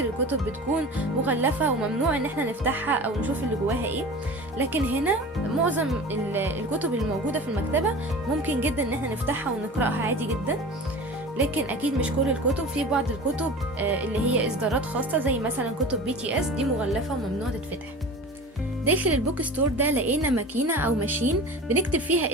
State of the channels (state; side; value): normal; both; correlation 0.36